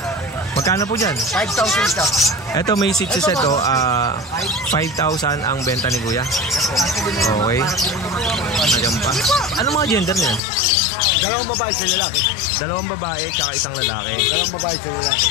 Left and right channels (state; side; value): drops out; right; at 10.4 s